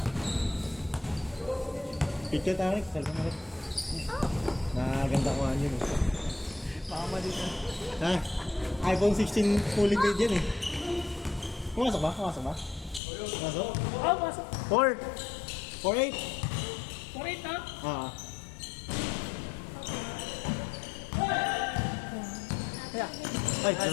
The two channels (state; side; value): drops out; right; at 13.0 s